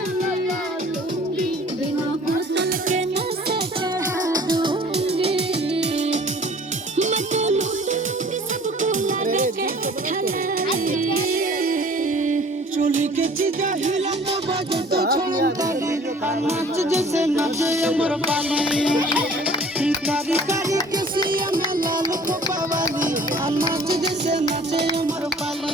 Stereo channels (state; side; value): normal; both; correlation 0.50